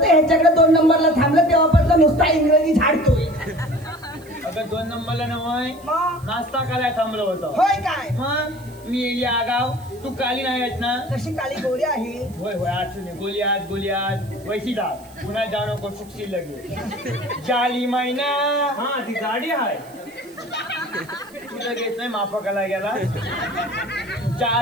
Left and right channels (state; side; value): noise; right; hiss, 25 dB below the sound